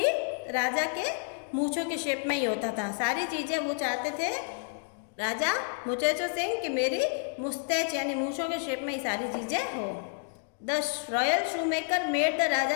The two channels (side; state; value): right; silent; 58 dB below the other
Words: राजा के मूंछों के शेप में ही होता था। सारी चीज़ें वो चाहते थे राजा मुचेचो सिंह कि मेरी मुस्टैच यानी मूंछों के शेप में ही सारी चीज़ें हो। The royal shoe maker made the